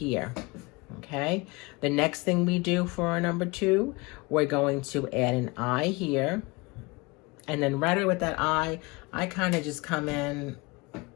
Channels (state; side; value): quieter; right; 25.4 dB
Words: okay? The next thing we do for our number 2, we're going to add an eye here. And then right away with that eye, I kind of just come in